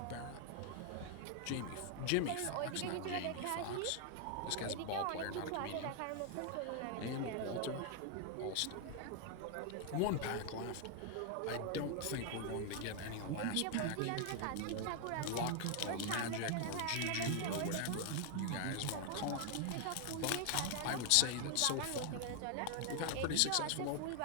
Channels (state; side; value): different; both; correlation 0.00